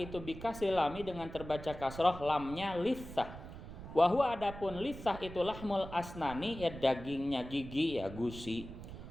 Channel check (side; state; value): right; noise; rumble, 12 dB below the sound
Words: bikasril lami, dengan terbaca kasroh lamnya litsah. Wa huwa, adapun litsah itu lahmul asnani, ya dagingnya gigi, ya gusi.